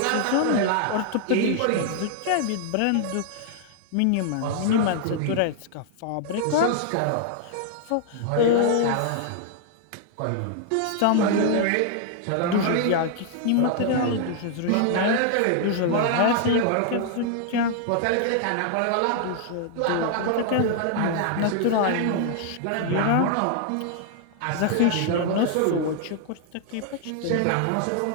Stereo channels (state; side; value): different; both; correlation 0.00